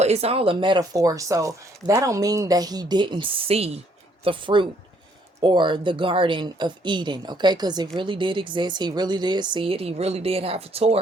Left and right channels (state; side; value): normal; both; correlation 0.67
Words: it's all a metaphor. So that don't mean that he didn't see the fruit or the Garden of Eden, okay? Because it really did exist. He really did see it. He really did have a